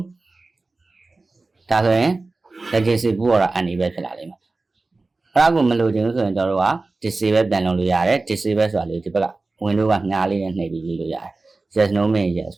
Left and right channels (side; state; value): left; quieter; 3.4 dB